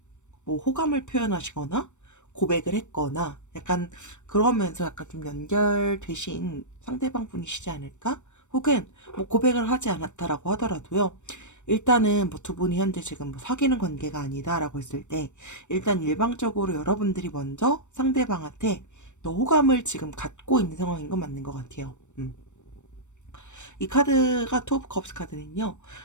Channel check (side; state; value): right; late; 0.84 ms